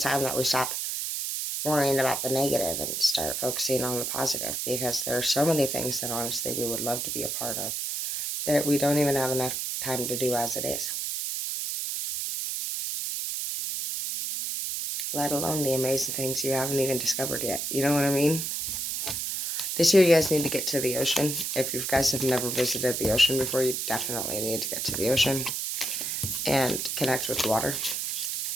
time that we stop worrying about the negative and start focusing on the positive, because there are so many things that honestly we would love to be a part of that we don't even have enough time to do as it is. Let alone the amazing things you haven't even discovered yet. You know what I mean? This year you guys need to get to the ocean. If you guys have never visited the ocean before, you definitely need to get to the ocean and connect with water.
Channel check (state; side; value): noise; right; hiss, 2 dB below the sound